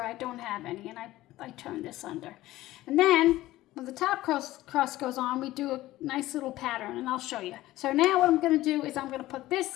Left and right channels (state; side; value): quieter; right; 16.3 dB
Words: I don't have any, and I turn this under. And then when the top crust goes on, we do a nice little pattern, and I'll show you. So now what I'm gonna do is I'm gonna put